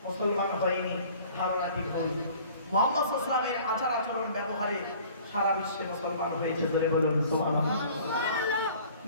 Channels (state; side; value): inverted; both; correlation -0.50